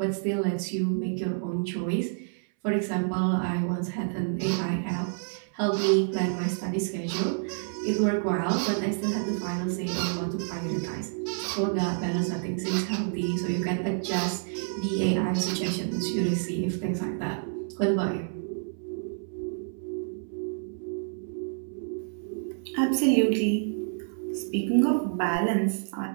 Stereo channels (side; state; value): left; silent; 59 dB below the other